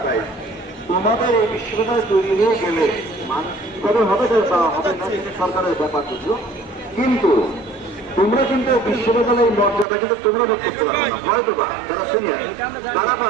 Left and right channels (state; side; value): drops out; left; at 9.9 s